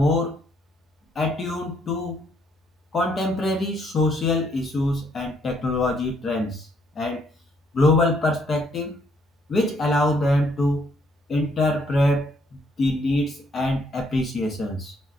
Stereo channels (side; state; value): both; normal; correlation 0.69